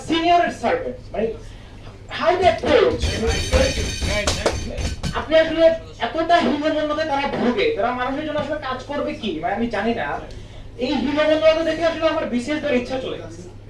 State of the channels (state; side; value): identical; both; correlation 1.00